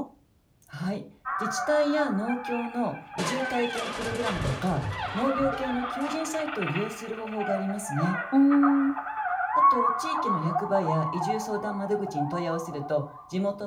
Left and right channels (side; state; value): both; identical; correlation 1.00